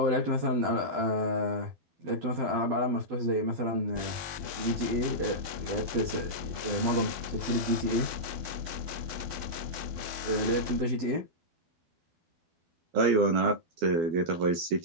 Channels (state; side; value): late; left; 12 ms